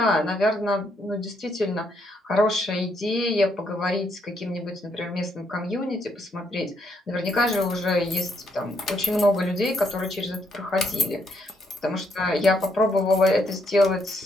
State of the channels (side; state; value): both; normal; correlation 0.74